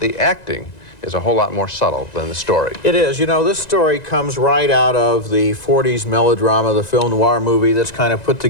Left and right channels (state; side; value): late; right; 1.9 ms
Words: acting is a whole lot more subtle than the story. It is. You know, this story comes right out of the 40s melodrama, the film noir movie that's kind of put